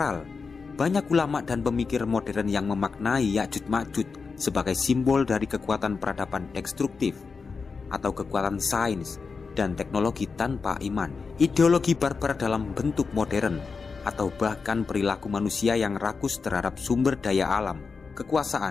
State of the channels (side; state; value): right; quieter; 4.9 dB